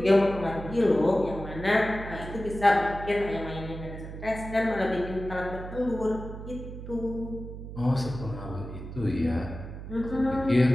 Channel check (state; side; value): noise; right; hum, 10 dB below the sound